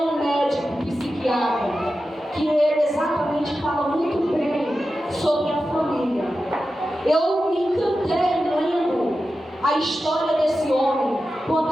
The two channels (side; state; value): both; normal; correlation 0.92